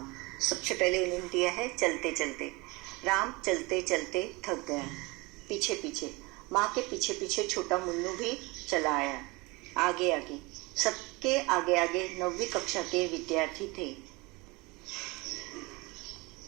सबसे पहले उन्होंने दिया है चलते चलते। राम चलते चलते थक गया। पीछे पीछे, माँ के पीछे पीछे छोटा मुन्नू भी चला आया। आगे आगे, सबके आगे आगे 9वीं कक्षा के विद्यार्थी थे।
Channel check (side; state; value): left; quieter; 24.6 dB